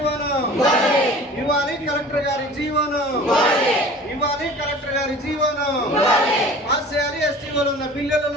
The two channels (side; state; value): both; normal; correlation 0.43